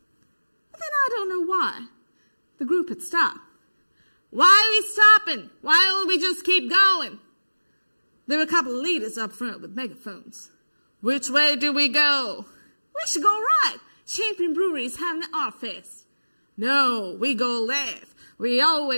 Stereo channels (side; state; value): both; inverted; correlation -1.00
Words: But then I don't know why. The group had stopped. Why are we stopping? Why don't we just keep going? There were a couple of leaders up front with megaphones. Which way do we go? We should go right. Champion Brewery is having an art fest. No, we go left. We